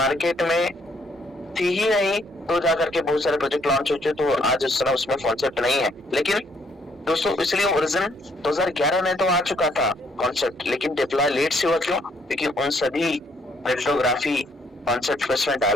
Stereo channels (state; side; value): normal; both; correlation 0.68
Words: में थी ही नहीं तो जाकर के बहुत सारे प्रोजेक्ट लॉन्च होते, तो आज उस समय उसमें कॉन्सेप्ट नहीं है। लेकिन दोस्तों इसलिए ओरिजिन 2011 में तो आ चुका था कॉन्सेप्ट, लेकिन डिप्लॉय लेट से हुआ। क्यों? क्योंकि उन सभी क्रिप्टोग्राफी कॉन्सेप्ट इसमें